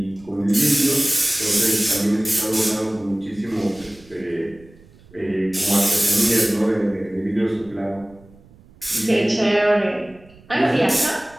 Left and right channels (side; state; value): right; noise; rumble, 25 dB below the sound